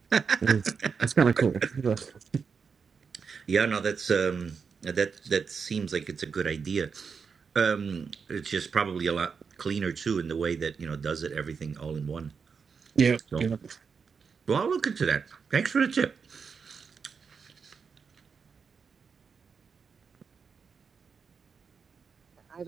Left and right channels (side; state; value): left; quieter; 5.8 dB